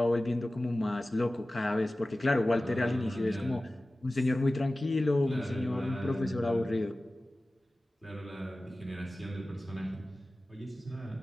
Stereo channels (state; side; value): normal; both; correlation 0.96